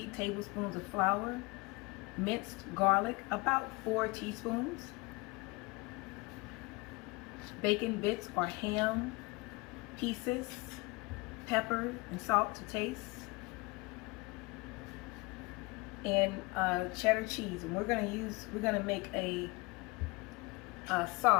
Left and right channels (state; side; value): quieter; right; 25.5 dB